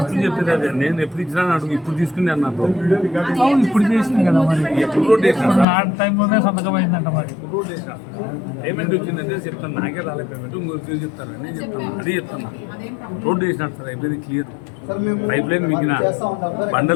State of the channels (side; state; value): right; drops out; at 5.7 s